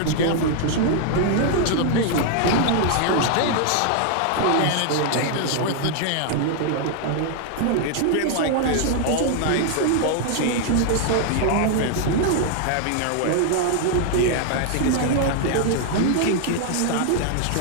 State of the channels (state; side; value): different; both; correlation 0.00